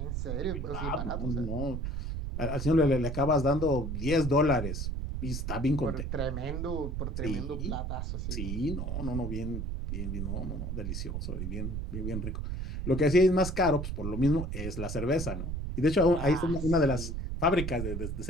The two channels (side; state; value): right; noise; rumble, 3 dB below the sound